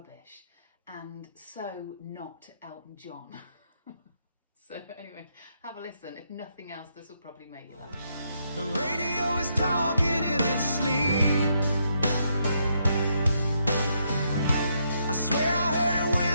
and so not Elton John. So anyway, have a listen. If nothing else, this will probably make you laugh. The radio is talking in its sleep. I swear I heard it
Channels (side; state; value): both; inverted; correlation -0.77